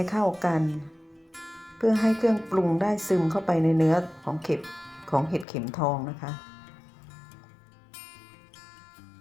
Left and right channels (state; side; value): drops out; right; at 5.5 s